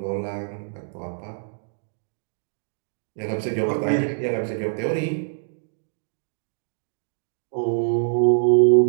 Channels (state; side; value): silent; left; digital silence